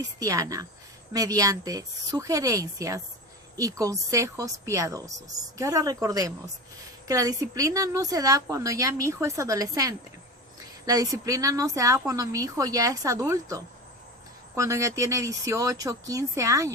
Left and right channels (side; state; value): both; normal; correlation 0.28